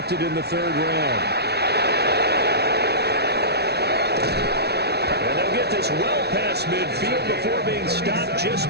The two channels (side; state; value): left; late; 0.48 ms